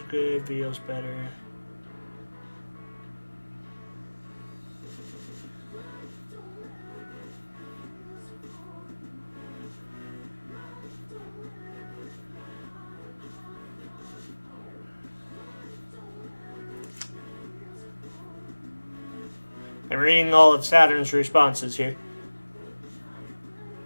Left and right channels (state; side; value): inverted; both; correlation -1.00